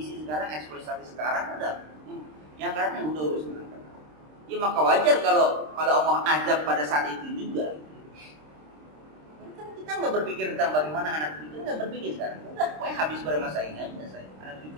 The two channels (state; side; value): late; left; 26 ms